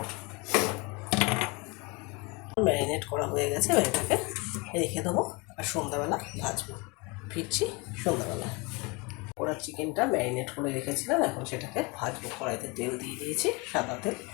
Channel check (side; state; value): right; quieter; 27.6 dB